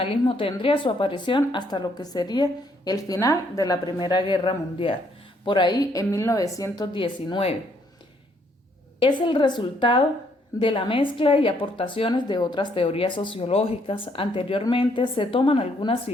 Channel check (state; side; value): normal; both; correlation 0.69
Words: tendría su aparición hasta lo que sería el final de la Primera Guerra Mundial, por ahí en 1919. Es el resultado de la mezcla y aportaciones de otras teorías sociológicas. Anteriormente se toman algunas